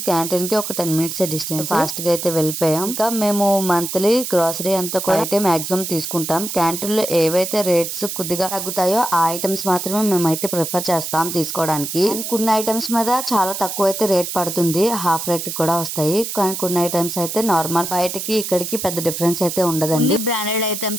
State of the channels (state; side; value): noise; right; hiss, 5 dB below the sound